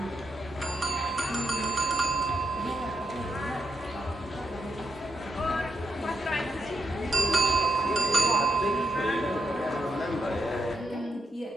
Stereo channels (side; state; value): both; normal; correlation 0.78